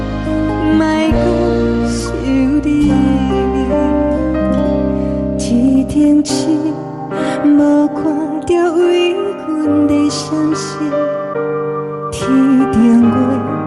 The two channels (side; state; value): both; identical; correlation 1.00